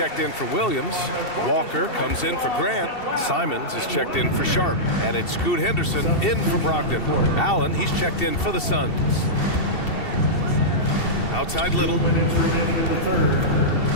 in for Williams. Walker comes in for Grant. Simons is checked in for Sharp. And it's Scoot Henderson in for Brogdon. Allen, he's checked in for the Suns. Outside Little.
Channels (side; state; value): right; late; 2.7 ms